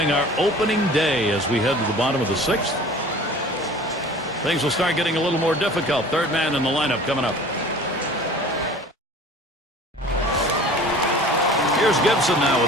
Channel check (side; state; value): both; normal; correlation 0.44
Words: our opening day as we head to the bottom of the 6th. Things will start getting a little more difficult. Third man in the lineup coming up. Here's Gibson now